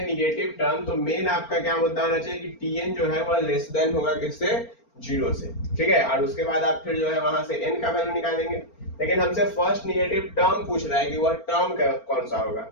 निगेटिव टर्म तो मेन आपका क्या मुद्दा होना चाहिए कि tn जो है वह लेस देन होगा किससे? जीरो से। ठीक है, और उसके बाद आप फिर जो है वहां से n का वैल्यू निकालेंगे। लेकिन हमसे फर्स्ट निगेटिव टर्म पूछ रहा है कि वह टर्म कौन सा होगा।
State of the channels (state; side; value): late; right; 4.4 ms